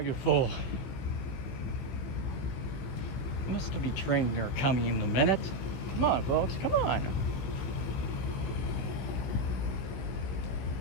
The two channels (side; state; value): right; late; 15 ms